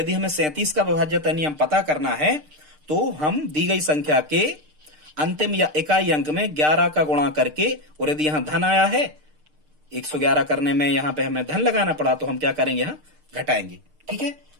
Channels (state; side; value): late; left; 6.6 ms